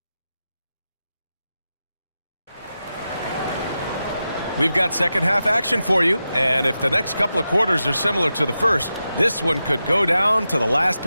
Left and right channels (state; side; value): inverted; both; correlation -0.91